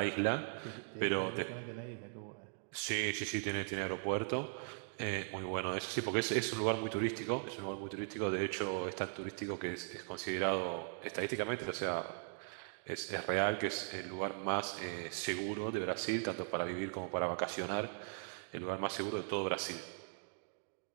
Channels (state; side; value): silent; left; digital silence